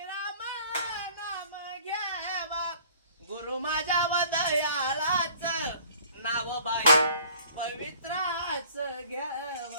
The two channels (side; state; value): both; inverted; correlation -0.52